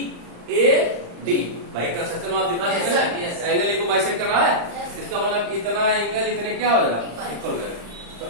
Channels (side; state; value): left; late; 35 ms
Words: ए डी। भाई कंस्ट्रक्शन आप दिखा सकते हैं ना एंगल ए को बाइसेक्ट कर रहा है, इसका मतलब इतना एंगल इतने क्या हो जाएगा इक्वल हो जाएगा। तो